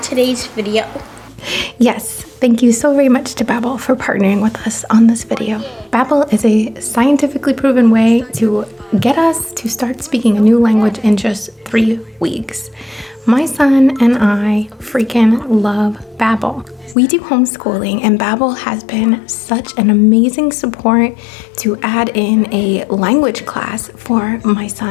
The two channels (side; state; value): right; drops out; at 16.9 s